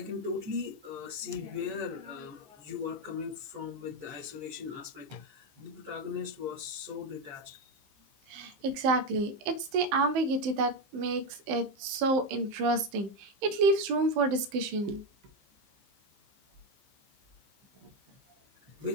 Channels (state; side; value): late; left; 15 ms